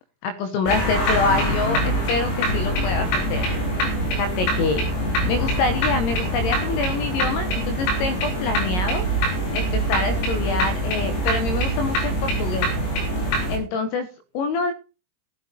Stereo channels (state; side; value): late; right; 22 ms